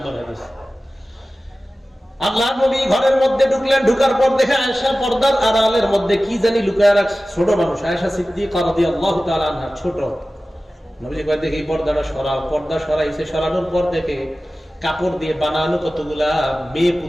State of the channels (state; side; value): normal; both; correlation 0.96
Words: হাদিস। আল্লাহ নবী ঘরের মধ্যে ঢুকলেন, ঢুকার পর দেখে আয়েশা পর্দার আড়ালের মধ্যে কি জানি লুকায় রাখছে। ছোট মানুষ আয়েশা সিদ্দিকা রাদিয়াল্লাহু তাআলা আনহা, ছোট। নবীজি কয়, দেখি পর্দাটা সরাও। পর্দা সরাইছে, সরানোর পর দেখে কাপড় দিয়ে বানানো কতগুলা মেয়ে